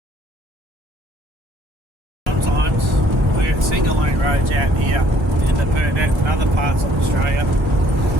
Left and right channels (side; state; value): both; normal; correlation 0.61